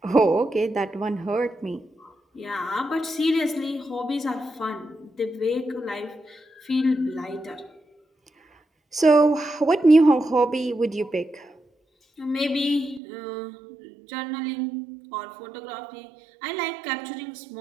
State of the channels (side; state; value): left; drops out; at 13.0 s